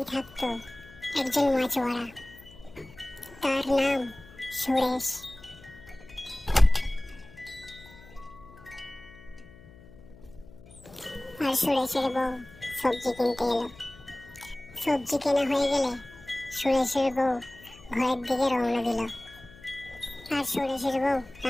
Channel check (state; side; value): noise; left; hum, 21 dB below the sound